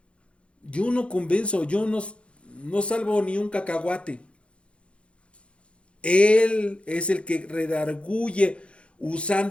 Yo no convenzo. Yo no salvo ni un cacahuate. Él es el que redarguye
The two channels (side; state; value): right; late; 0.059 ms